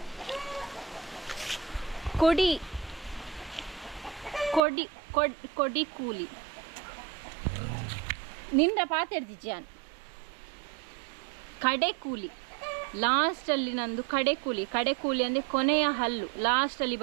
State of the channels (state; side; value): drops out; left; at 4.6 s